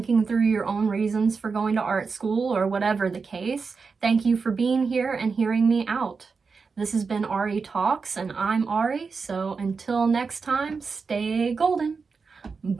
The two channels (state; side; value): quieter; left; 4.9 dB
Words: through your own reasons for going to art school or whatever the case. Thank you for being here and hearing me out. This has been Ari Talks, and I'm Ari, so until next time, stay golden.